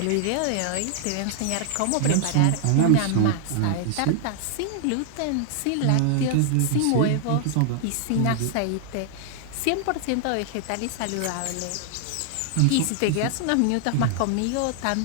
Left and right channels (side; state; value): both; different; correlation 0.00